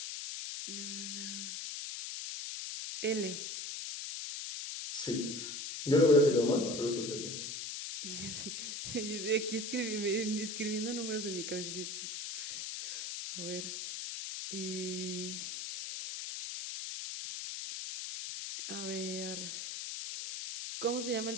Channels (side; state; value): left; noise; hiss, 5 dB below the sound